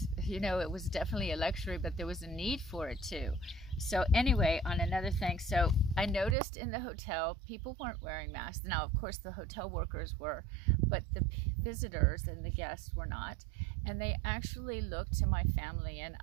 You know, it was definitely a luxury, but there was a need for it too. So anyway, on another thing, so I noticed in the hotel, people weren't wearing masks. Now, of course, the hotel workers were, but the visitors and the guests were not. And they actually looked to my family and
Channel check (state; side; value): drops out; left; at 6.4 s